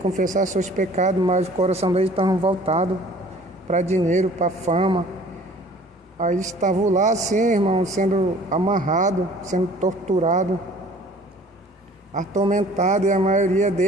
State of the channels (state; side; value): normal; both; correlation 0.51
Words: seus pecados, mas o coração dele estava voltado para dinheiro, para fama. Aí estavam lá assim, irmão, sendo amarrado, sendo torturado, atormentado, e a maioria